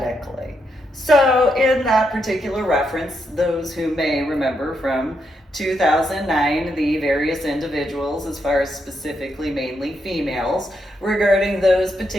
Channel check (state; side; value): normal; both; correlation 0.80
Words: So in that particular reference, those who may remember from 2009, the various individuals, as far as specifically mainly females, regarding those